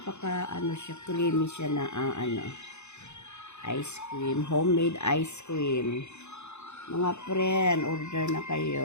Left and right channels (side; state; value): right; late; 0.82 ms